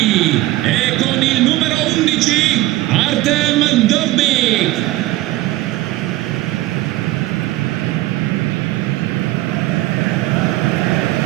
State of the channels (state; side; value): quieter; left; 17.1 dB